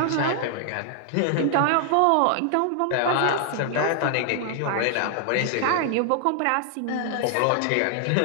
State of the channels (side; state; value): both; different; correlation 0.00